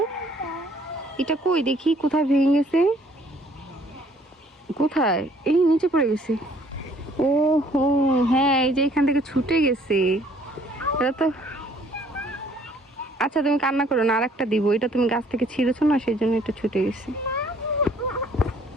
এটা কই দেখি, কোথায় ভেঙে গেছে? কোথায়? এই নিচে পড়ে গেছে। ও হো, হ্যাঁ, এই যে এখান থেকে ছুটে গেছে। এটা তো আচ্ছা, তুমি কান্না করো না, আরেকটা দিব। এটা তুমি গাছ থেকে ছিঁড়েছো না, সেই জন্য এটা ছুটে গেছে।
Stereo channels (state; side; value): normal; both; correlation 0.60